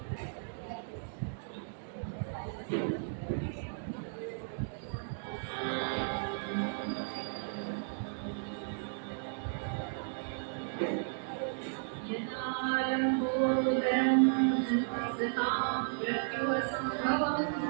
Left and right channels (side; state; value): left; silent; digital silence